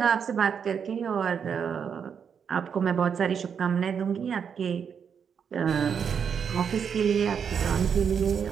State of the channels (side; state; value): left; quieter; 7.1 dB